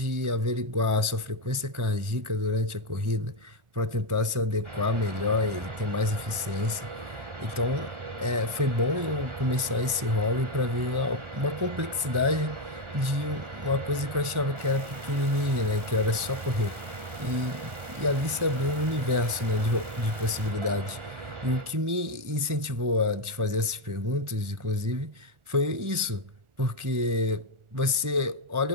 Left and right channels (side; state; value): left; late; 1.4 ms